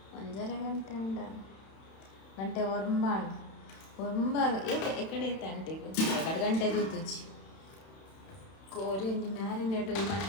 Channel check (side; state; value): right; late; 31 ms